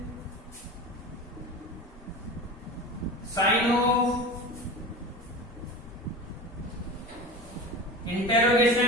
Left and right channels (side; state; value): both; normal; correlation 0.32